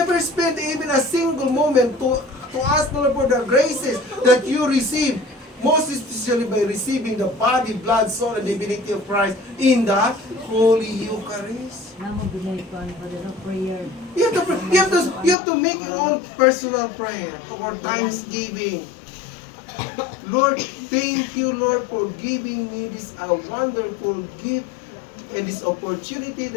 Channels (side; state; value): right; drops out; at 15.4 s